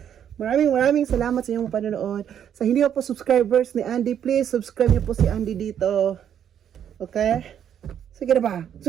Maraming salamat sa inyong panonood. Sa hindi po subscribers ni Andy, please subscribe niyo po si Andy dito. Okay? Sige na ba?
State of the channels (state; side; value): quieter; left; 9.3 dB